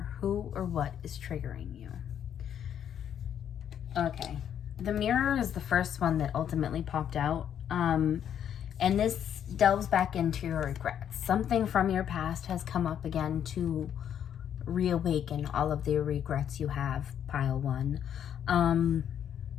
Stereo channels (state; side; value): quieter; right; 9.3 dB